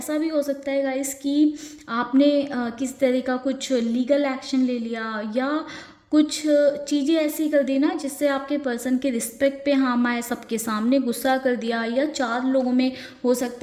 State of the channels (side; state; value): both; identical; correlation 1.00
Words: भी हो सकता है गाइस कि आपने किस तरह का कुछ लीगल एक्शन ले लिया या कुछ चीज़ें ऐसी कर दी ना जिससे आपके पर्सन के रिस्पेक्ट पे हार्म आए, सबके सामने गुस्सा कर दिया, या चार लोगों में हो